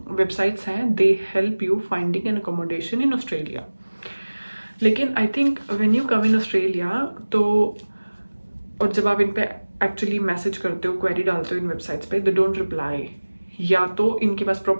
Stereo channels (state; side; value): inverted; both; correlation -1.00